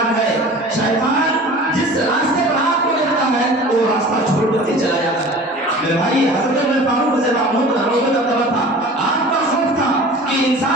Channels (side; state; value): both; normal; correlation 0.41